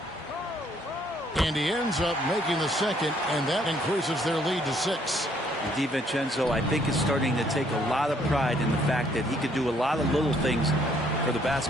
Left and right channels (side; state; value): both; normal; correlation 0.66